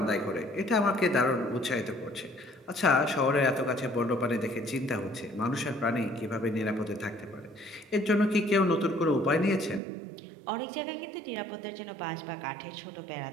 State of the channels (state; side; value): drops out; left; at 9.8 s